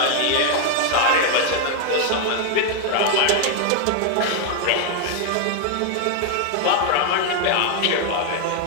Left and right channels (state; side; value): different; both; correlation 0.01